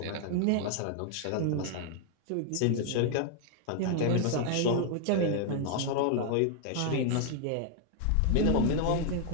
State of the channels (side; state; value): both; different; correlation 0.00